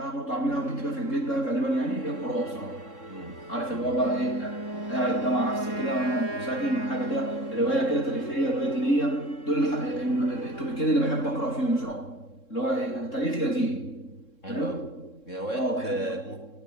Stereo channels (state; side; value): late; right; 3.7 ms